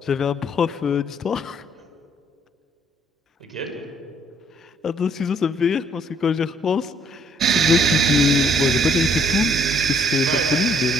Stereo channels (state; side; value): normal; both; correlation 0.64